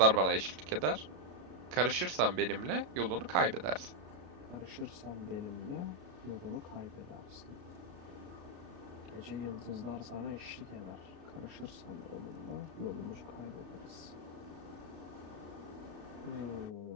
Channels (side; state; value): left; late; 33 ms